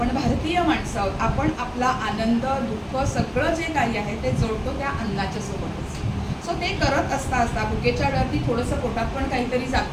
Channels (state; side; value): identical; both; correlation 1.00